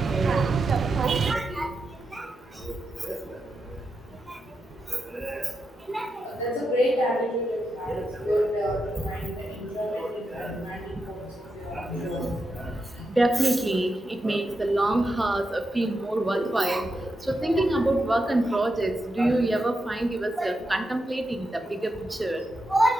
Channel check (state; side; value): normal; both; correlation 0.86